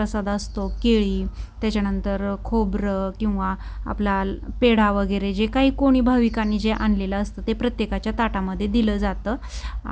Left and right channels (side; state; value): both; identical; correlation 1.00